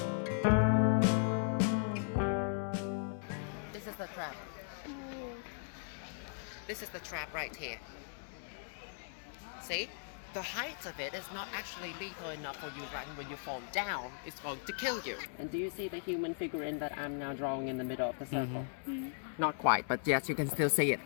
This is the trap. This is the trap right here. See? The height of it is not actually lethal enough for you, right? When you fall down, it's going to kill you. And do you see the human figurine that I'm now drawing in the middle of the circle? Not quite, but yes, you can still see it,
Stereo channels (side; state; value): right; silent; 53 dB below the other